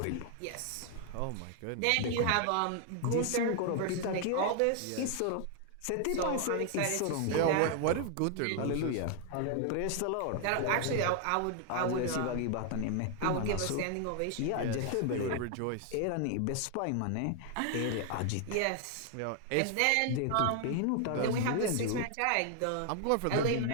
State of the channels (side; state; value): both; different; correlation 0.00